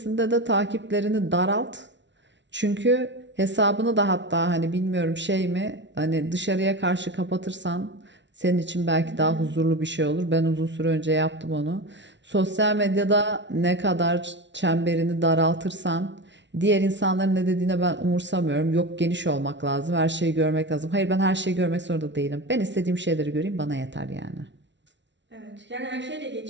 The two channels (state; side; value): late; left; 0.52 ms